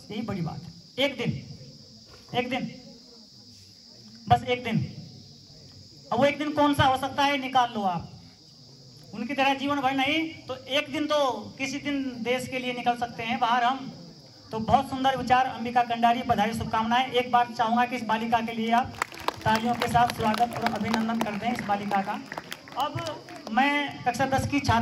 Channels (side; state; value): both; identical; correlation 1.00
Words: यही बड़ी बात है। एक दिन बस एक दिन। अब वो एक दिन कौन सा हो सकता है निकाल लो आप। उनकी तरह जीवन भर नहीं तो एक दिन तो किसी दिन देश के लिए निकल सकते हैं बाहर हम। तो बहुत सुंदर विचार अंबिका कंडारी, बधाई शुभकामनाएं। एक बार चाहूंगा कि इस बालिका के लिए आप तालियों के साथ स्वागत और अभिनंदन करते हैं इस बालिका का। अब मैं कक्षा 10 की